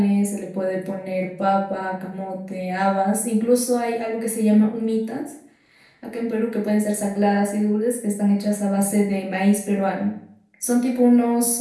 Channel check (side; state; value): both; identical; correlation 1.00